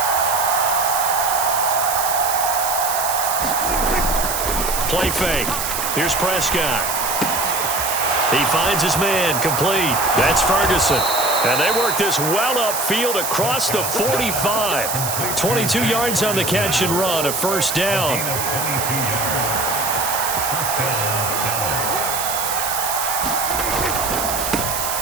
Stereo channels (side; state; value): right; noise; hiss, 3 dB below the sound